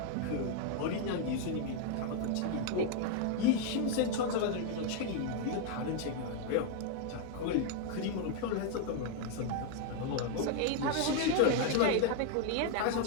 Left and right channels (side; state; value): both; different; correlation 0.00